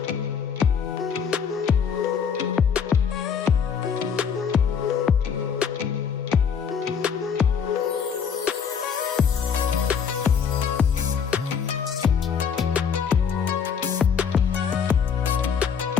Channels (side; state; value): right; quieter; 6.9 dB